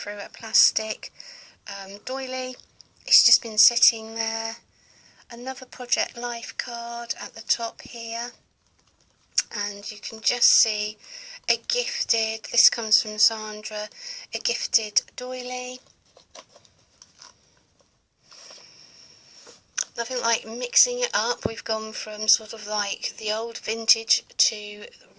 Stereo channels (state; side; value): identical; both; correlation 1.00